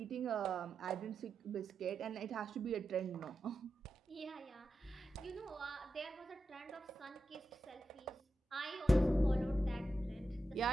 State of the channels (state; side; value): normal; both; correlation 0.89